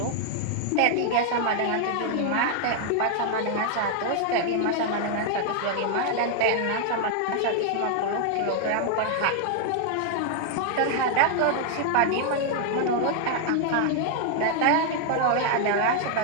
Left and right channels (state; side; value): different; both; correlation 0.00